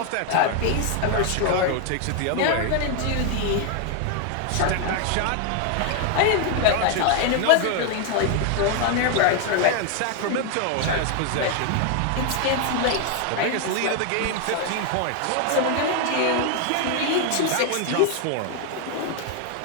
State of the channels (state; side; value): different; both; correlation 0.00